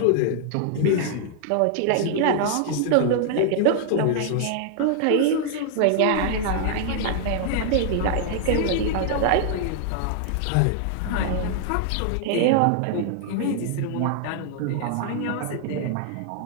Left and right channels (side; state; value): both; different; correlation 0.00